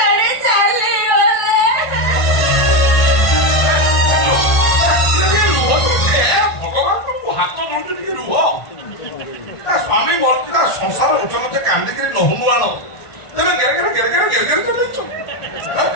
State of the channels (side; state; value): right; late; 1.5 ms